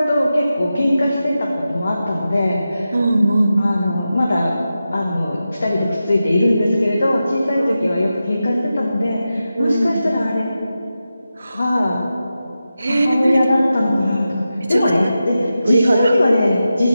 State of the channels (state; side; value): inverted; both; correlation -0.91